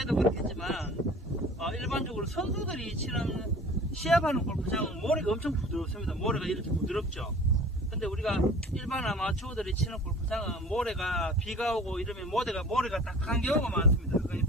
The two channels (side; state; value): both; normal; correlation 0.44